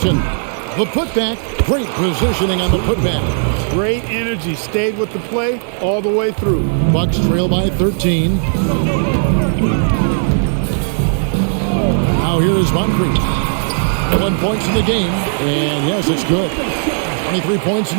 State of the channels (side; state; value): left; silent; digital silence